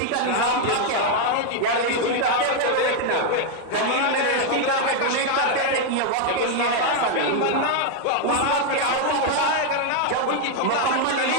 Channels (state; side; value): different; both; correlation 0.01